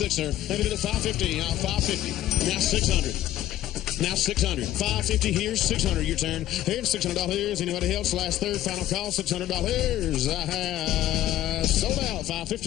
sir. Maybe to 550. 550. Now 600. Now 600. 550 here, 600 your turn. Here's $600. Anybody else? Last third, final call, $600. Sold out.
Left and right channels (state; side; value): quieter; right; 13.5 dB